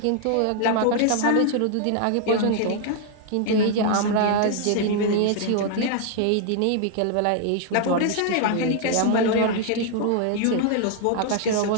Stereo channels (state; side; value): different; both; correlation 0.00